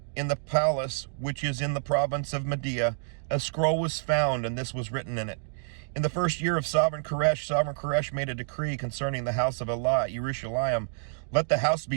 in the palace which is in the province of Media, a scroll was found, and this was written in it. In the first year of Sovereign Koresh made a decree concerning the house of Allah at Jerusalem. Let the house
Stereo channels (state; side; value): silent; left; digital silence